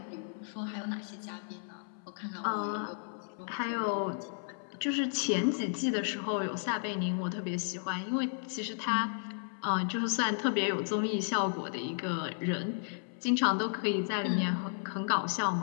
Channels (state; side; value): silent; right; 55 dB below the other